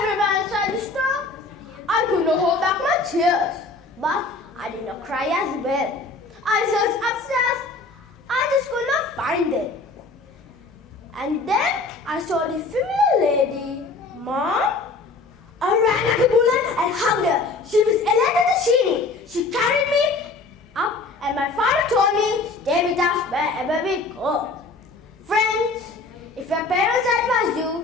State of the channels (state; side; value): quieter; right; 3.5 dB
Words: inside the store. I could not hold back my tears, but I did not cry as well. I searched upstairs. I just could not find them. And then I saw the familiar lady. Mom? I ran like a bullet and hugged her. She was Elena Tashini. She carried me up and my father told me, stay with us wherever we go. Friends, if your parents advise you,